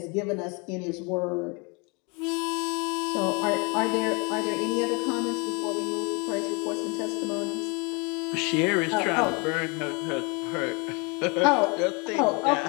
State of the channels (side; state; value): right; quieter; 30.8 dB